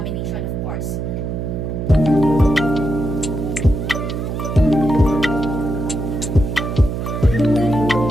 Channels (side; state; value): right; noise; hum, 3 dB below the sound